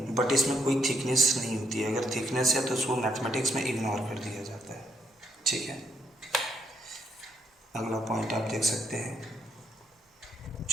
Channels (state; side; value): normal; both; correlation 0.74